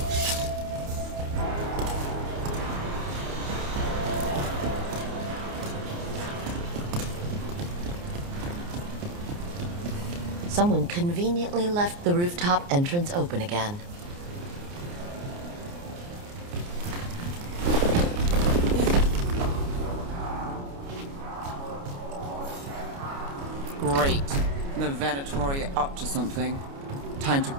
Someone conveniently left the rooftop entrance open again. Great. The Venatori are up to something. Time to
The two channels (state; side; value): late; left; 29 ms